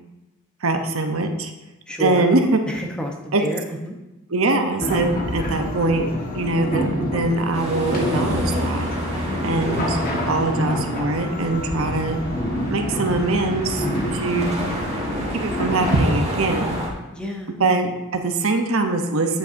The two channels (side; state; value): both; normal; correlation 0.32